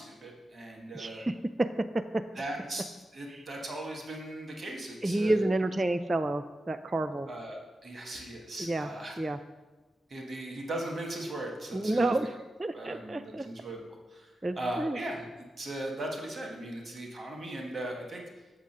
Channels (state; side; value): normal; both; correlation 0.91